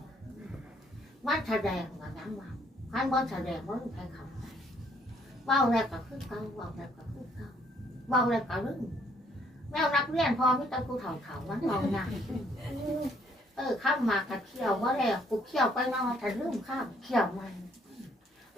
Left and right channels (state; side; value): normal; both; correlation 0.66